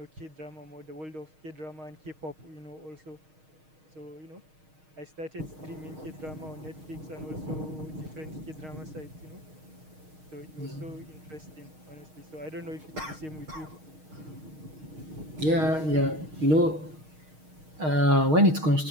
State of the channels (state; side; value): late; left; 6.4 ms